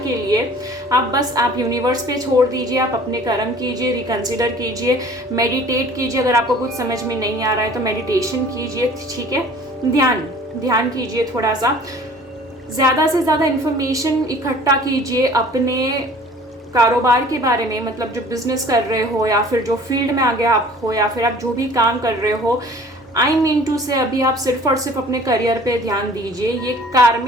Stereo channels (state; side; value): normal; both; correlation 0.49